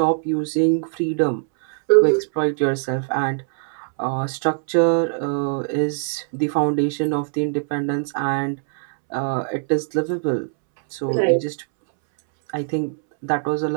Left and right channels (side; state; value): left; silent; 64 dB below the other